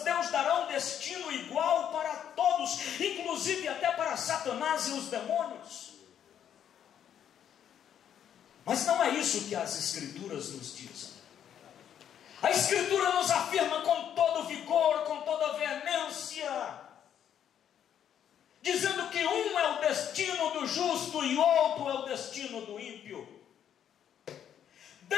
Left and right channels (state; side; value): quieter; right; 9.4 dB